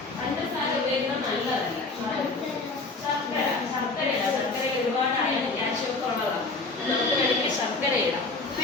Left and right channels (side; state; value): right; quieter; 3.5 dB